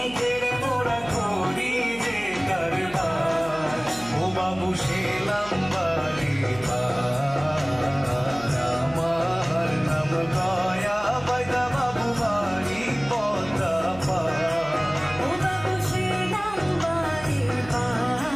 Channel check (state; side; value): noise; right; hum, 18 dB below the sound